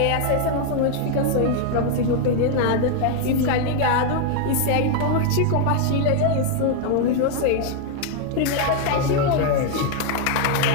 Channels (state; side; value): different; both; correlation 0.00